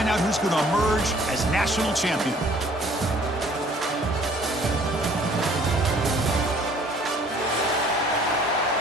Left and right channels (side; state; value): both; normal; correlation 0.56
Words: out who's going to emerge as national champion.